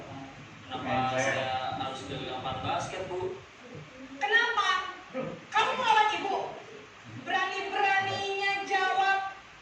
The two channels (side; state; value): both; identical; correlation 1.00